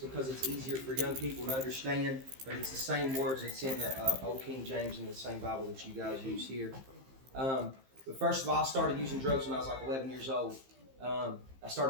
because it's easier for young people to understand, but it's the same words that's in the Old King James and the same Bible that you guys use here. But first of all, I started using drugs when I was like 11 years old. I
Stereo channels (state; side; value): late; left; 15 ms